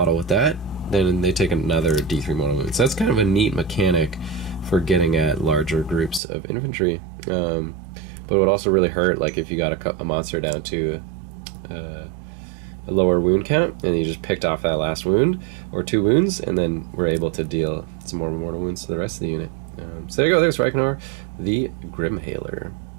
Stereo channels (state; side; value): drops out; left; at 6.2 s